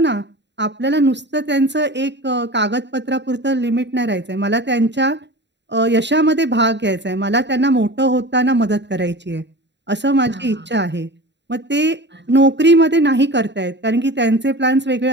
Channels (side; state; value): left; late; 0.51 ms